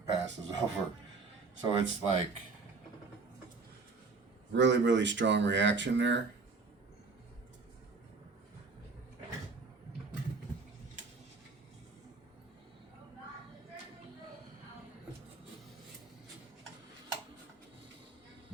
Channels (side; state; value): left; quieter; 4.3 dB